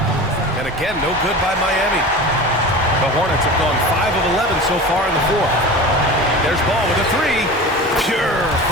And again, no good by Miami. The Hornets have gone 5 of 11 so far in the 4th. There's Ball with a 3. Pure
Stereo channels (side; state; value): both; normal; correlation 0.33